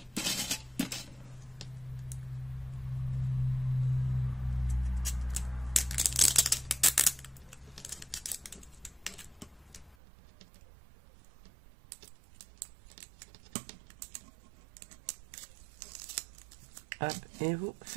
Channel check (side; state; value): left; drops out; at 10.0 s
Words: Hop, et vous